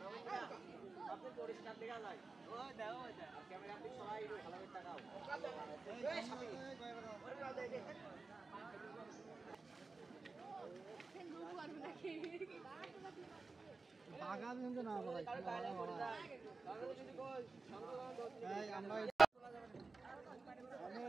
পরিষ্কার দেখা যায়, ওই দেখো ক্যামেরা আপনি সবাই ভালোভাবে তাকাও। বাগান কিন্তু না ভাই, আমরা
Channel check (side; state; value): left; quieter; 3.9 dB